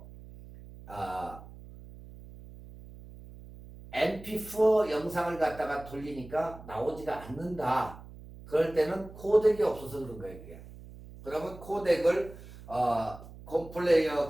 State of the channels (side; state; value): right; noise; hum, 17 dB below the sound